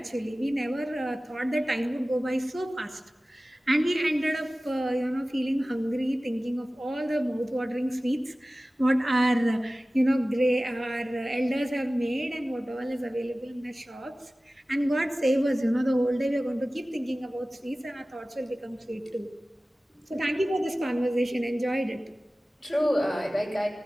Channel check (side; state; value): both; normal; correlation 0.97